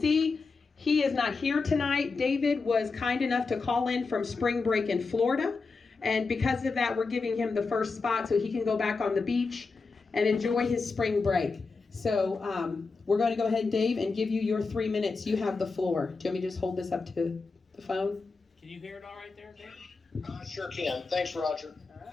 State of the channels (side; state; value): right; quieter; 4.3 dB